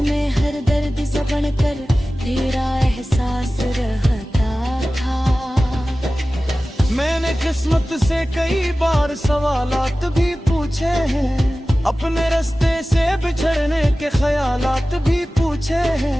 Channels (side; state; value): both; normal; correlation 0.96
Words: हर दर्द से बनकर तेरा एहसास रहता था। मैंने किस्मत से कई बार सवालात भी पूछे हैं, अपने रास्ते से बिछड़ने के ख्यालात भी पूछे